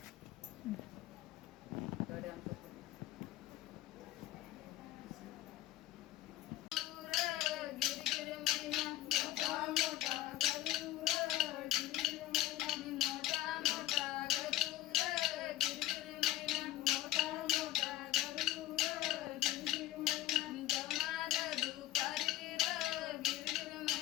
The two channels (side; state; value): right; quieter; 15.0 dB